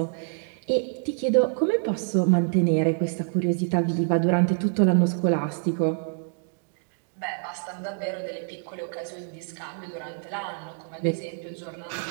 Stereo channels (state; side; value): silent; left; 61 dB below the other